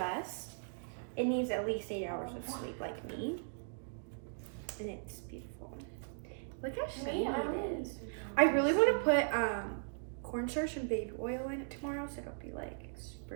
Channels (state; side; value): silent; left; digital silence